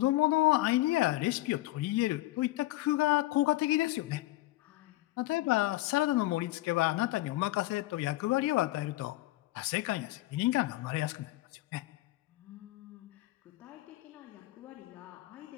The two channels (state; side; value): quieter; right; 17.8 dB